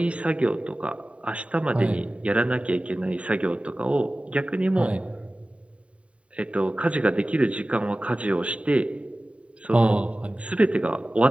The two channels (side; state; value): left; late; 0.063 ms